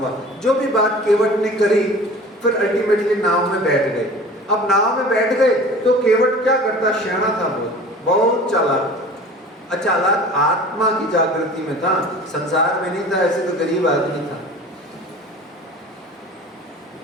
जो भी बात केवट ने करी, फिर अल्टीमेटली नाव में बैठ गए। अब नाव में बैठ गए तो केवट क्या करता? शैना था, बहुत चालाक, अचालाक आत्मा की जागृति में था, संसार में नहीं था। ऐसे तो गरीब आदमी था।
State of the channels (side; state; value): both; normal; correlation 0.42